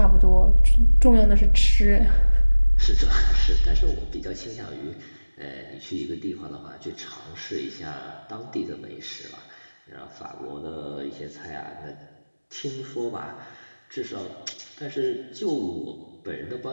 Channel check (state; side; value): inverted; both; correlation -1.00